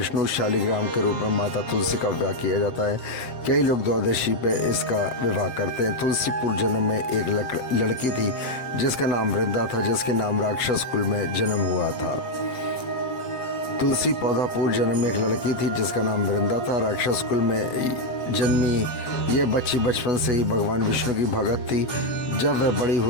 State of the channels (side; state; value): right; late; 7.6 ms